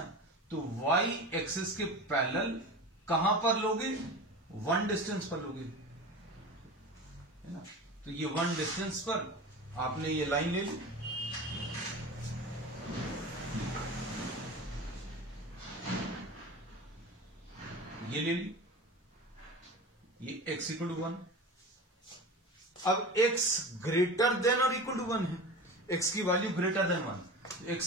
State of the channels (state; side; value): normal; both; correlation 0.31